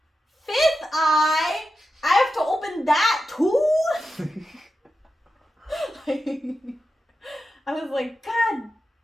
fifth eye? I have to open that too? I was like, God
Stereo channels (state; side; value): normal; both; correlation 0.90